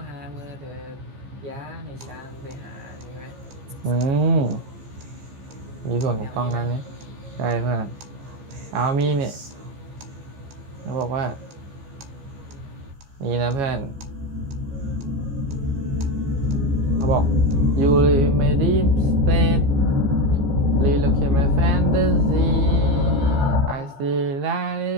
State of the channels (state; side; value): late; left; 15 ms